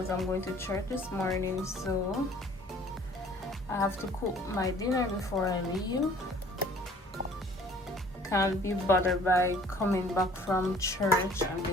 I'm going to church this morning, so I have to cook my dinner before I leave. Can't be bothered by coming back from church and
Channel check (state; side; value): normal; both; correlation 0.53